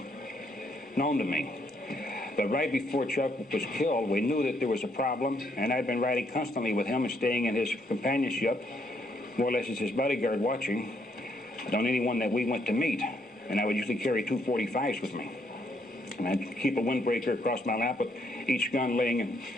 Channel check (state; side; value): normal; both; correlation 0.72